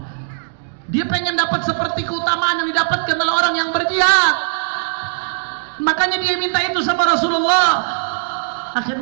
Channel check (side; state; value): left; silent; digital silence